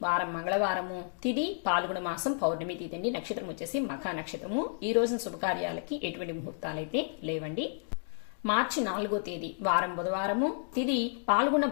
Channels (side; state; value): right; silent; digital silence